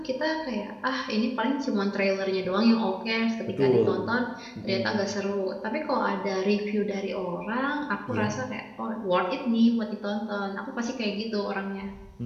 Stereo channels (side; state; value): both; identical; correlation 1.00